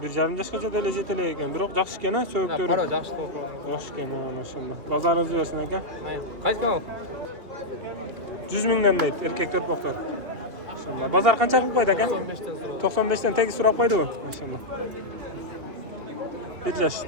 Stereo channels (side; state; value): left; late; 3.1 ms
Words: 1,5 yoshgacha dele yetilek ekan. Biroq yaxshi ekan, so'yibdir. Qaro yaxshi to'lgan. Yaxshi ekan, maşallah. Bozoringiz bo'lsin aka. Qaysi kanal? 100 mingdan deydi, erkak to'rpoqlar. Maşallah. Bozor qancha qilib qo'ydi aka? 95 dan tegi so'rab qo'ydi u. Maşallah. 1 yosh